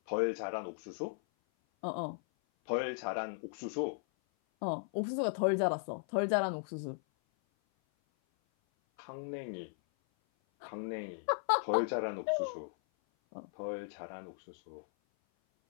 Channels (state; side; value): silent; right; 53 dB below the other